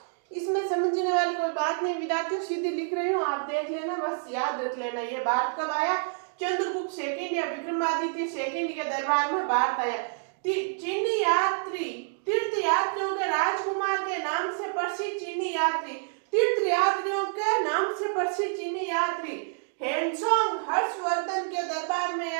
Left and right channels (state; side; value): silent; left; digital silence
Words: इसमें समझने वाली कोई बात नहीं विद्यार्थियों, सीधी लिख रही हूँ, आप देख लेना, बस याद रख लेना। ये भारत कब आया, चंद्रगुप्त सेकंड या विक्रमादित्य सेकंड के दरबार में भारत आया। चीनी यात्री तीर्थ यात्रियों के राजकुमार के नाम से प्रसिद्ध चीनी यात्री, तीर्थ यात्रियों के नाम से प्रसिद्ध चीनी यात्री हेनसोंग हर्षवर्धन के दरबार में